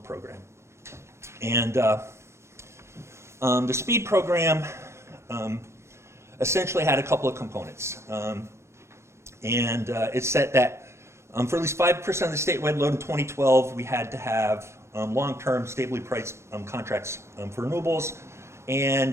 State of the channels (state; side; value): late; left; 0.13 ms